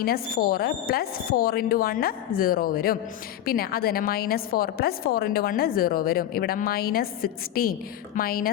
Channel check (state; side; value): quieter; right; 11.7 dB